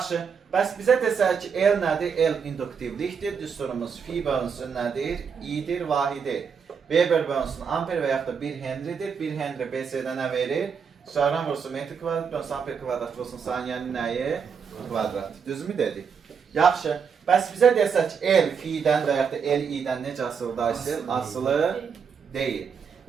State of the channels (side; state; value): left; quieter; 6.4 dB